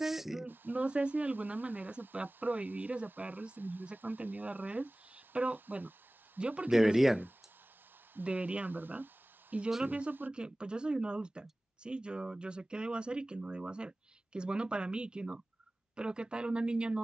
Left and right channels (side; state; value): both; normal; correlation 0.98